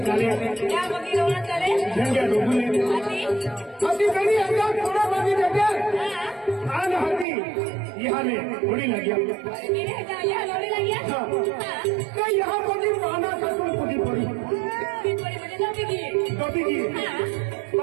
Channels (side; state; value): left; drops out; at 7.2 s